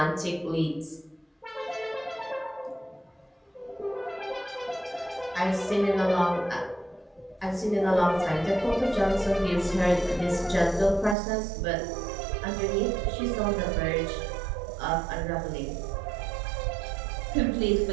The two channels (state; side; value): drops out; left; at 11.2 s